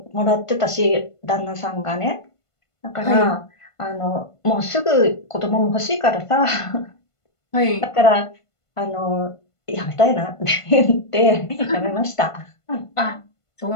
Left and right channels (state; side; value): late; right; 1.5 ms